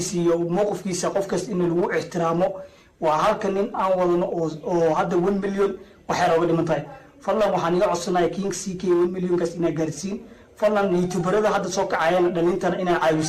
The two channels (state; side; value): identical; both; correlation 1.00